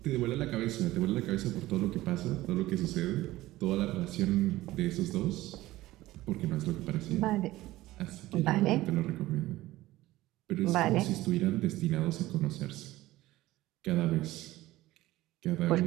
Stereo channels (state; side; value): quieter; left; 17.0 dB